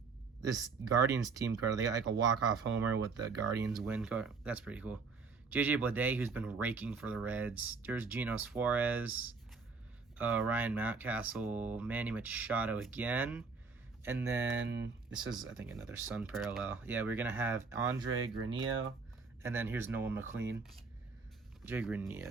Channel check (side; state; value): left; quieter; 4.7 dB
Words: This Guardians team card, they got like a walk-off homer with the Guardians win card. That's pretty cool. JJ Bleday, who's been raking for the Reds. There's Gino Suarez, Ryan Mountcastle, Manny Machado again. And then this is, I think, another Sun parallel. Yeah, we're going to have Andre Granillo. And then here's Nolan McLean. Jay